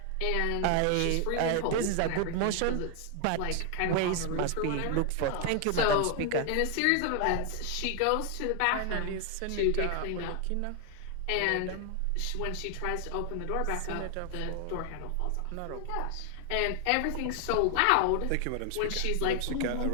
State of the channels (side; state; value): both; different; correlation 0.00